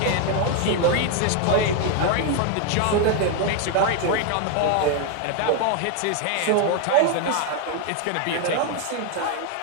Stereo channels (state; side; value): different; both; correlation 0.01